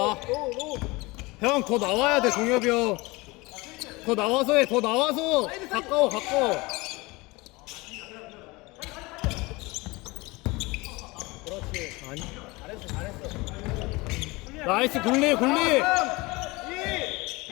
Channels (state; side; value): quieter; right; 23.5 dB